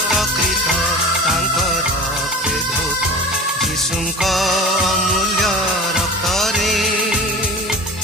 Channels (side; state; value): both; normal; correlation 0.37